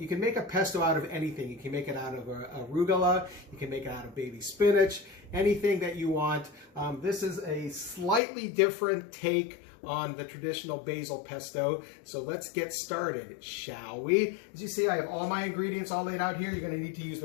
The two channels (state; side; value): drops out; right; at 8.2 s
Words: can make a pesto out of anything. You can make it out of arugula, you can make it out of baby spinach, anything that you want. This is a slightly different take on the traditional basil pesto. So let's get started, shall we? As you see, I have all my ingredients all laid out here. You're going to need to use